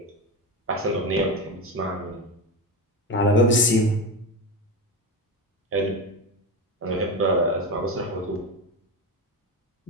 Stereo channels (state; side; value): normal; both; correlation 0.19